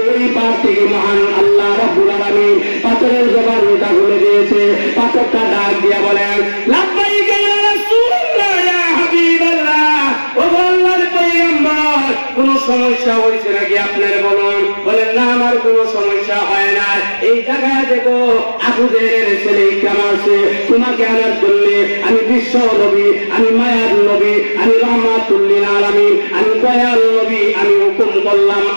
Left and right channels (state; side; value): inverted; both; correlation -1.00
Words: ওই পার থেকে মহান আল্লাহ রাব্বুল আলামিন পাথরের জবানটা খুলে দিয়েছে। পাথরটা ডাক দিয়া বলেন, লাব্বাইক ইয়া রাসূলুল্লাহ, ইয়া হাবিবাল্লাহ। ও আল্লাহর পয়গম্বর, কোন সমস্যা হয়েছে নাকি আপনার বলুন? বলেন না, আমার কোন সমস্যা হয় না। এই জায়গায় দেখো আবু জেহেলের ছেলে ইকরাম আছে, তোমাকে আনার জন্য আমি বিশ্ব নবী, আমি মায়ার নবী, আমি রহমাতুল লিল আলামিন, আমি দয়াল নবী, আমি হুকুম করলাম